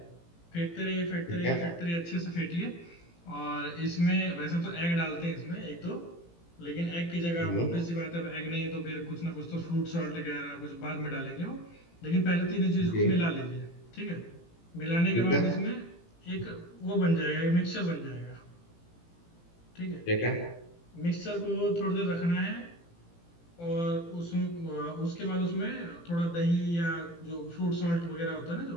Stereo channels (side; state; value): right; late; 18 ms